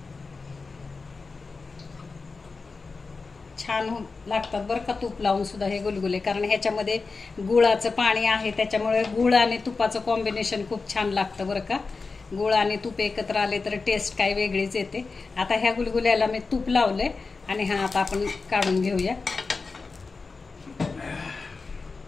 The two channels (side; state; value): right; quieter; 4.2 dB